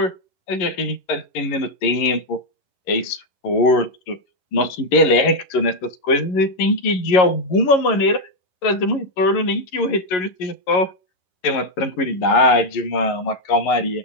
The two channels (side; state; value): right; late; 11 ms